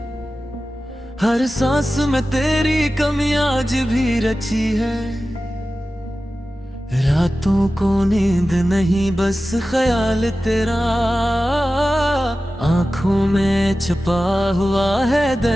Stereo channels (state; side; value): normal; both; correlation 0.95